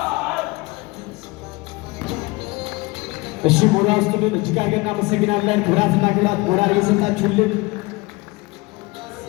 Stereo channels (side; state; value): right; quieter; 23.9 dB